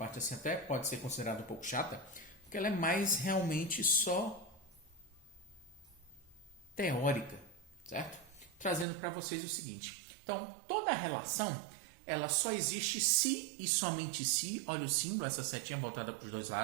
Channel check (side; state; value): left; drops out; at 8.8 s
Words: assim até pode ser considerada um pouco chata, porque ela é mais realmente só teórica, certo? Trazendo para vocês o seguinte. Então, toda relação, ela só existe se e somente se, olha o símbolo, essa setinha voltada para os dois